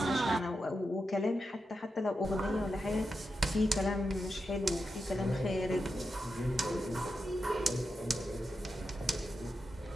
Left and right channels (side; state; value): both; normal; correlation 0.88